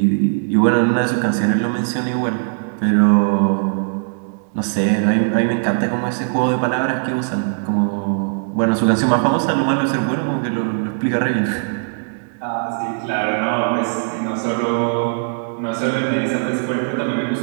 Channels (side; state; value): left; silent; digital silence